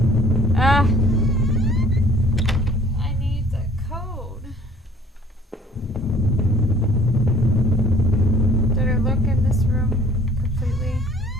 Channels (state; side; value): normal; both; correlation 0.56